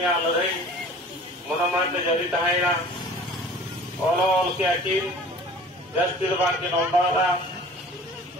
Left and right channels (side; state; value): both; normal; correlation 0.45